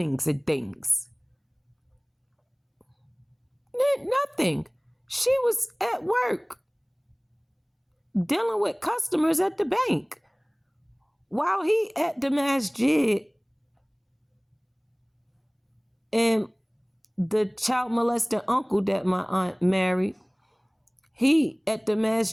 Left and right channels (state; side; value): identical; both; correlation 1.00